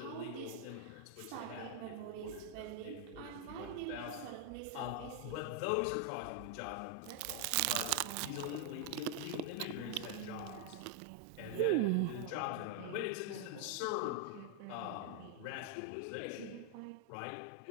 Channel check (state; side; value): different; both; correlation 0.00